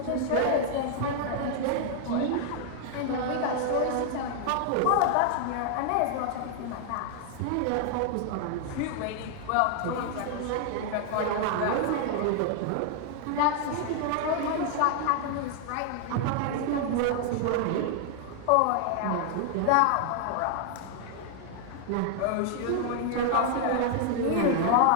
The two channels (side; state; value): both; different; correlation 0.00